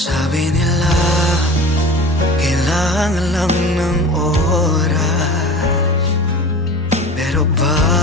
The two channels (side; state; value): both; normal; correlation 0.37